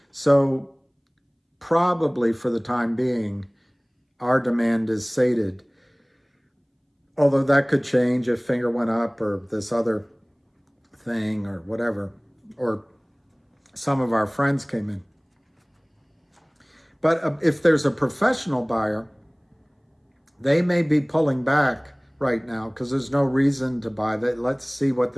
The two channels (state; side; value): identical; both; correlation 1.00